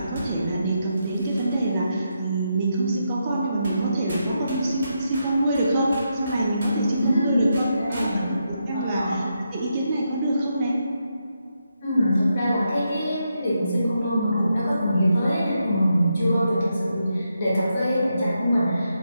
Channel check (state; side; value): inverted; both; correlation -0.83